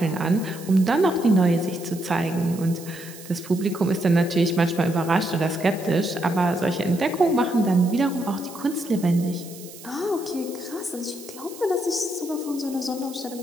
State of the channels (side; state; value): right; noise; hiss, 17 dB below the sound